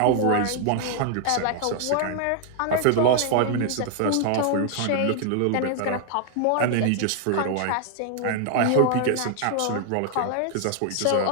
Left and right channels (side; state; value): both; different; correlation 0.00